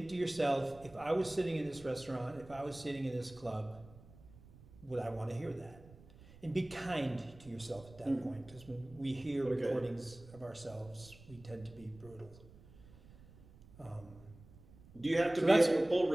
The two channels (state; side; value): noise; right; rumble, 21 dB below the sound